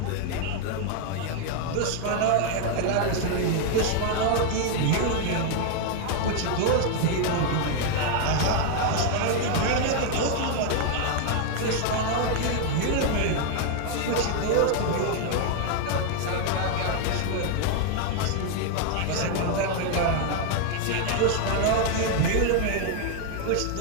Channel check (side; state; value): both; different; correlation 0.00